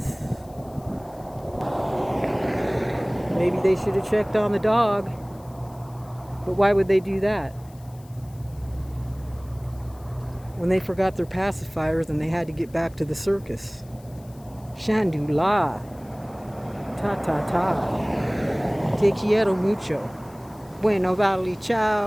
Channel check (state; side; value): noise; left; hiss, 27 dB below the sound